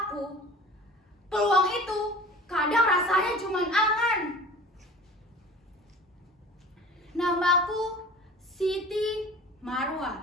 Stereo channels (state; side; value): normal; both; correlation 0.42